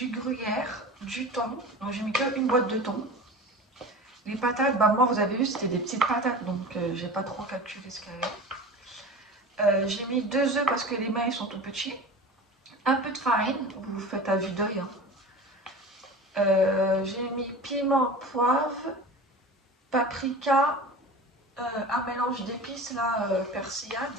gruyère, du thon. Donc j'ai mis qu'une boîte de thon. Les patates, bah moi vous avez vu c'était des petites patates donc j'ai pas trop calculé ce qu'il y avait. J'ai mis 2 œufs parce que les mains ils sont tout petits. Un peu de farine, vous faites à vue d'œil. Hein. J'ai mis piment, poivre, paprika, un mélange d'épices là, persillade,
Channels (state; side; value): normal; both; correlation 0.34